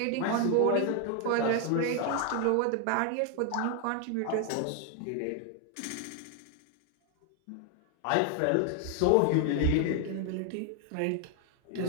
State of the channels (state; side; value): different; both; correlation 0.00